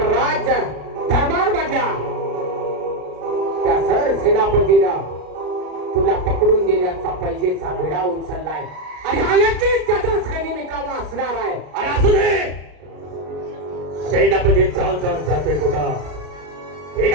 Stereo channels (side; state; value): left; late; 34 ms